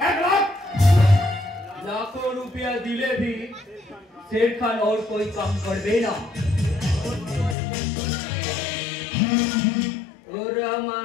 1 लाख? लाखों रुपया दिले भी शेर खान और कोई काम कर देना। और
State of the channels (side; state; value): right; drops out; at 7.6 s